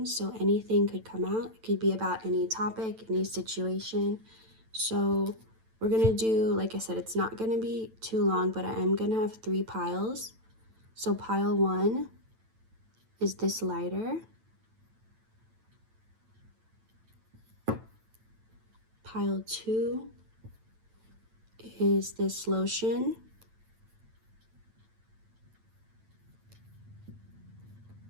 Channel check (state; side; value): late; left; 9.0 ms